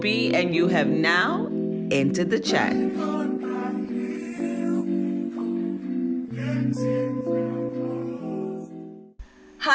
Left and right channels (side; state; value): both; identical; correlation 1.00